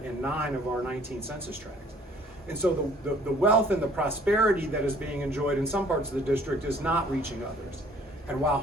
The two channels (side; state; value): both; normal; correlation 0.56